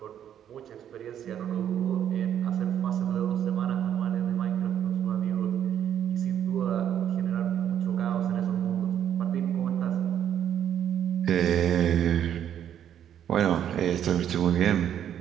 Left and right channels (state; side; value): quieter; left; 9.9 dB